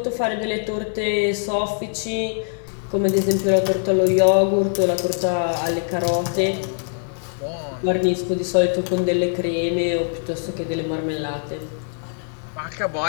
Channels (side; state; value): right; silent; digital silence